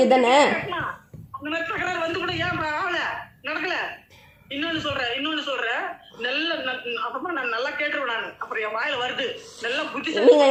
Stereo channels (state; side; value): identical; both; correlation 1.00